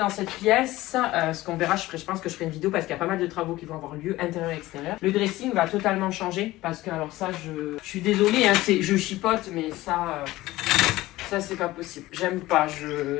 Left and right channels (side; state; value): right; quieter; 17.6 dB